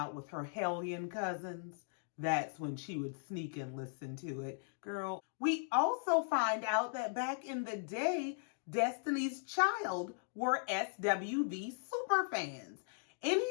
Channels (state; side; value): silent; right; digital silence